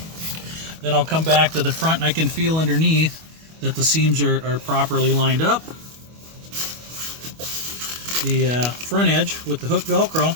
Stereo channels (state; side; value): late; left; 25 ms